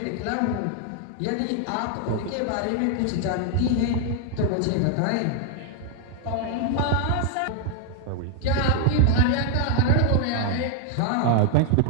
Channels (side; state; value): both; different; correlation 0.00